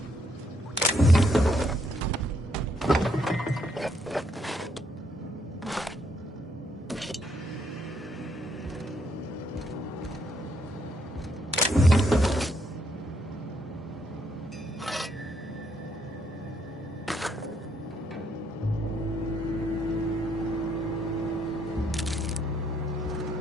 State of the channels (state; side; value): normal; both; correlation 0.73